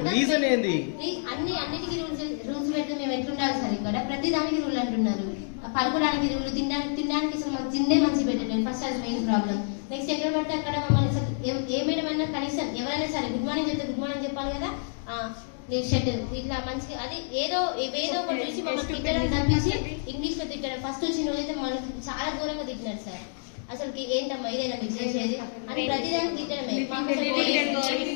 రీజన్ ఏంది? అన్నిటికీ రూల్స్ పెడితే మేము ఎట్లుండాలి సార్? ఇక్కడ ప్రతి దానికి రూల్ అంటున్నారు. పడుకోవడానికి రూల్, తినడానికి అసలు మాకు తిండే మంచి పెట్టలేదు. ఫస్ట్ అది మెయిన్ ప్రాబ్లం. నెక్స్ట్ ఎక్కడ పడితే అక్కడ మమ్మల్ని అసలు ఏ మేడం అయినా కనీసం ఎవరైనా సరే గుడ్ మార్నింగ్ చెప్తే గుడ్ మార్నింగ్ చెప్పాలి కదా. షర్ట్ ఇట్లా మంచిగా అది ఏదో ఒకటి చూసి మమ్మల్ని తిట్టడం తప్పించి ఇంగ్లీష్ లో తిట్టడం. ఫస్ట్ వచ్చిన రోజైతే మనకి చాలా ఘోరంగా తిట్టినారు సార్. అసలు ఏంటమ్మా ఇదేనా మీకు చేసేది అని ప్రతిదానికి తిట్టడమే.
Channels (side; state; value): right; silent; digital silence